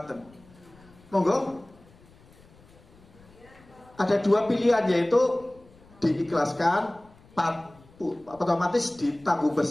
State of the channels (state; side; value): noise; left; rumble, 26 dB below the sound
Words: Monggo. Ada dua pilihan, yaitu diikhlaskan, otomatis ditanggung